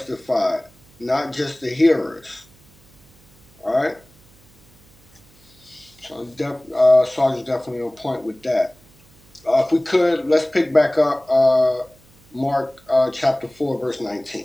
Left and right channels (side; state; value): right; noise; hum, 29 dB below the sound